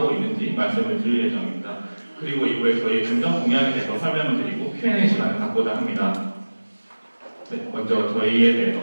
있는지 말씀을 드릴 예정입니다. 그리고 이후에 저희의 중점 공약에 대해서 설명을 드리고 Q&A 시간을 갖고자 합니다. 네, 먼저 저희에 대해서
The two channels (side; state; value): both; inverted; correlation -1.00